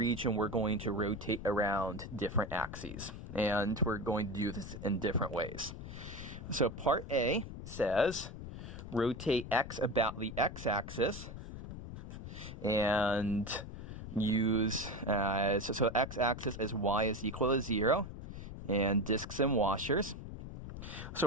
we're going to rotate around different axes. And we're going to do this in different ways. So part A says, rotate x about the x-axis, and use, so x-axis is y is equal to 0, and discs and washers.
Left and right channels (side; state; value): left; noise; rumble, 10 dB below the sound